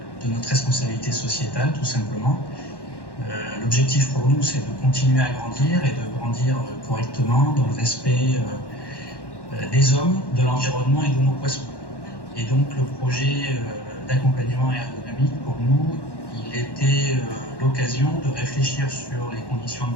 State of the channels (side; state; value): right; late; 1.1 ms